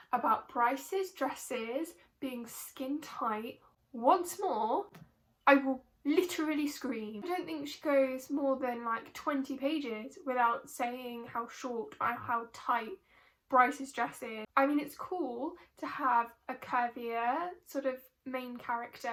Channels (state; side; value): identical; both; correlation 1.00